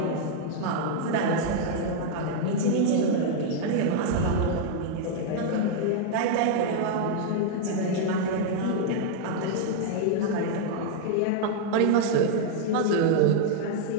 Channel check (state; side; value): different; both; correlation -0.01